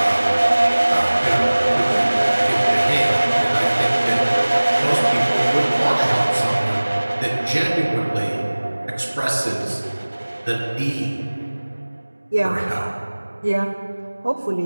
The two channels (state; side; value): inverted; both; correlation -1.00